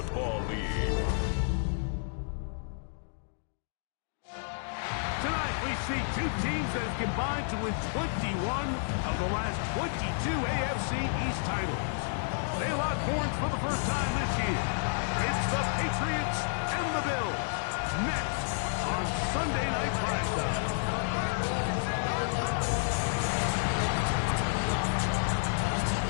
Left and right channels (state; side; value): silent; right; digital silence